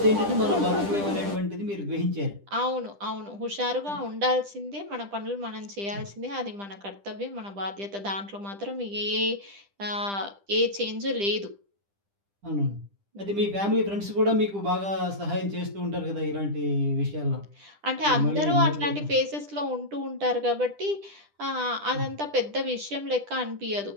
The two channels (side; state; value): left; late; 10 ms